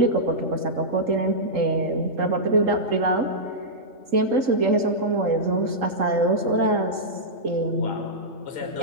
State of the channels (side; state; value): left; late; 3.8 ms